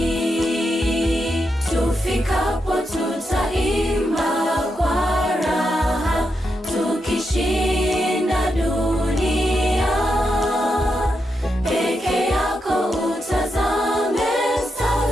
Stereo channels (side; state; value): both; normal; correlation 0.84